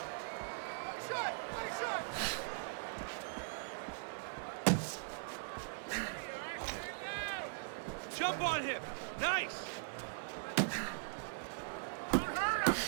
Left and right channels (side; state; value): left; silent; digital silence